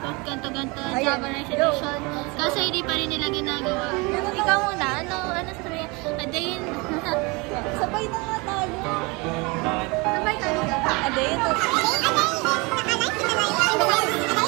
of ganto-ganto Java Resolution. Kasi hindi pa rin nila ginagawa. Ikaw muna, ano sabihin? A day in... Sabay na nga tayo. Sabay tayo. A day in the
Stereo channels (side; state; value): left; quieter; 27.2 dB